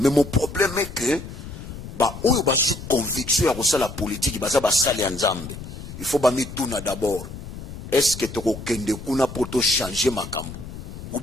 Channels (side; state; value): left; noise; rumble, 11 dB below the sound